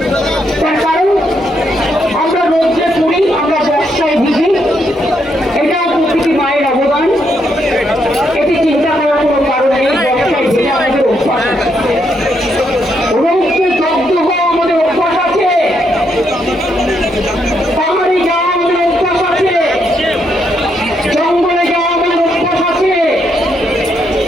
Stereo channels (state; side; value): normal; both; correlation 0.77